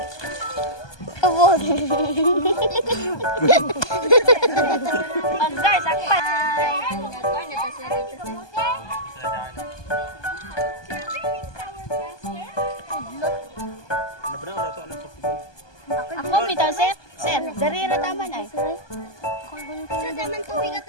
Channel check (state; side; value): late; right; 1.2 ms